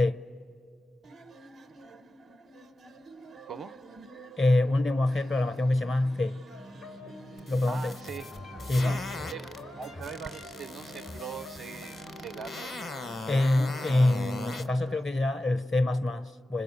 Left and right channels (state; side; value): normal; both; correlation 0.94